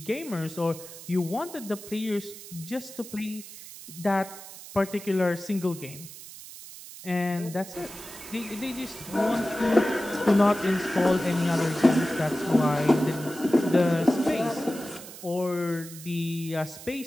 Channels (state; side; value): noise; right; hiss, 15 dB below the sound